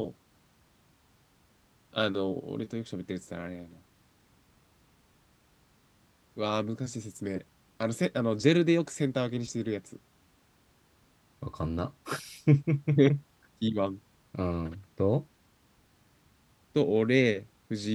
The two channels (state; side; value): identical; both; correlation 1.00